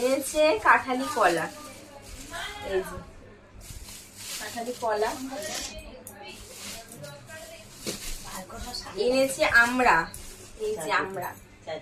কাঁঠালি কলা, এই যে কাঁঠালি কলা এনেছে। আমরা, এই যে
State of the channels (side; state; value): both; identical; correlation 1.00